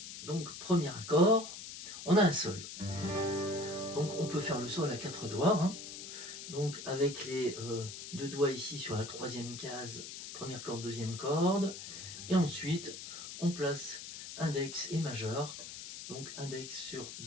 Donc, premier accord, on a un sol. Donc, on peut faire le sol à 4 doigts. Hein. Donc, avec les deux doigts ici sur la troisième case, première corde, deuxième corde. Et ensuite, on place index et majeur. Donc, index sur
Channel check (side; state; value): left; noise; hiss, 10 dB below the sound